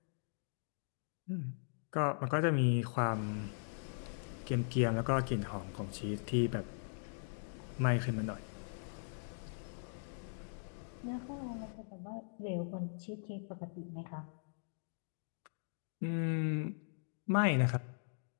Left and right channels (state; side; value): silent; right; digital silence